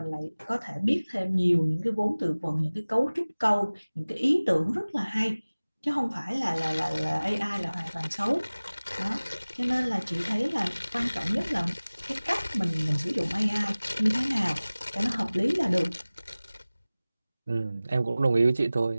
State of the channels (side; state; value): both; inverted; correlation -0.99